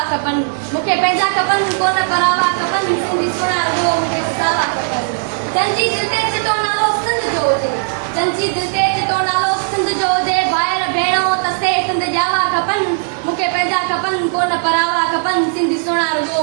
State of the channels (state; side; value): silent; left; digital silence